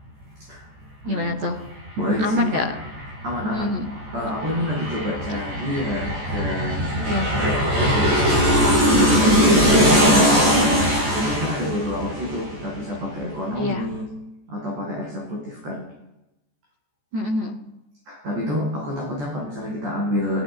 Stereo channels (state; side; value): late; left; 14 ms